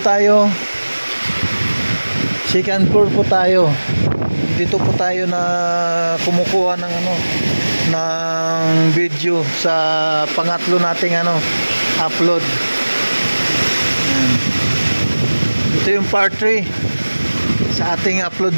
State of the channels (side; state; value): both; inverted; correlation -1.00